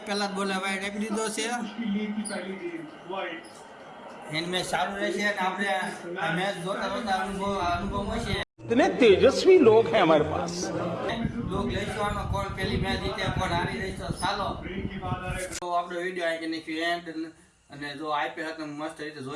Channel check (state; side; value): identical; both; correlation 1.00